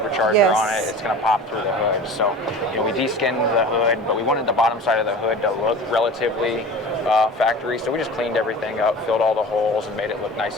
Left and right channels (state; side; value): normal; both; correlation 0.38